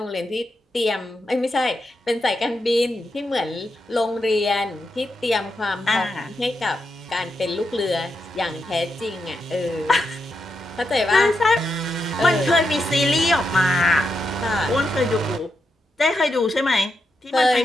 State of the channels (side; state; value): both; normal; correlation 0.85